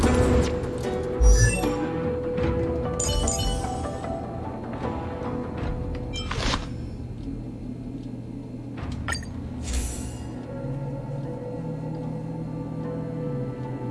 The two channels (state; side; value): identical; both; correlation 1.00